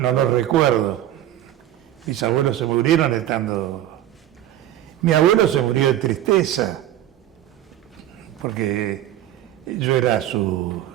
los recuerdo. Mis abuelos se murieron estando... Mi abuelo se murió de tristeza, porque yo era su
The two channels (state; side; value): quieter; left; 12.5 dB